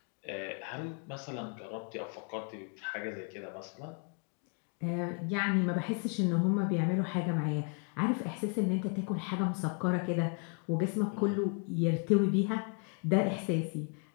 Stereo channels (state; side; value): quieter; right; 38.5 dB